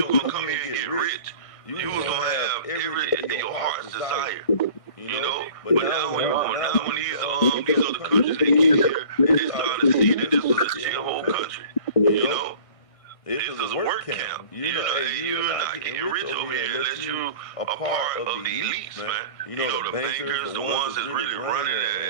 were gonna come here and get rich. You was gonna have your heart's desire. You know, but now when these other countries they get here, they start to see that this was a chill whole country. You know, this is a work camp. You're not getting rich over here unless you a part of the elites, man. You know, the bankers, the ones that's really running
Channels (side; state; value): right; late; 1.6 ms